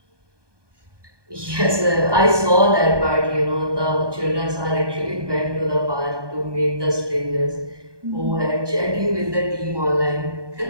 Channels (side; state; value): left; late; 1.2 ms